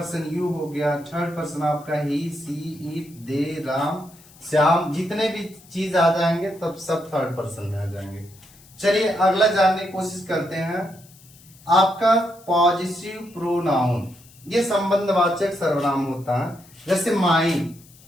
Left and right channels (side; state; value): left; noise; hiss, 25 dB below the sound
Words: यू हो गया, थर्ड पर्सन आपका ही, सी, इट, दे, राम, श्याम, जितने भी चीज आ जाएंगे तब सब थर्ड पर्सन में आ जाएंगे। चलिए अगला जानने की कोशिश करते हैं। आपका पॉजिटिव प्रोनाउन, ये संबंधवाचक सर्वनाम होता है। जैसे mine,